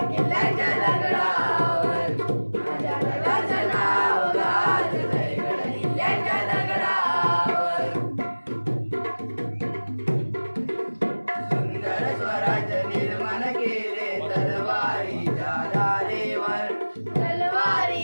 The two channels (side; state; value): both; inverted; correlation -1.00